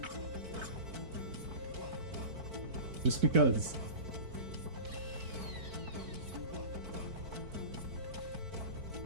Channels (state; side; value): late; left; 4.5 ms